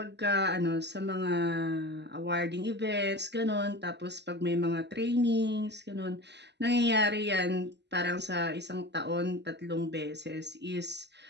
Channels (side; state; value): left; late; 0.50 ms